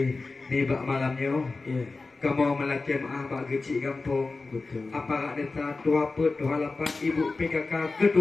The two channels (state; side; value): quieter; right; 3.7 dB